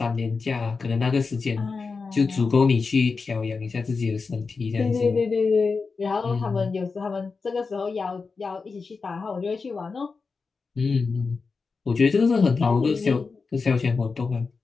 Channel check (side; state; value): right; quieter; 4.6 dB